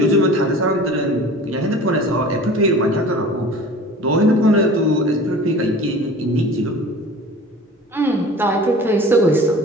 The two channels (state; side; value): normal; both; correlation 0.41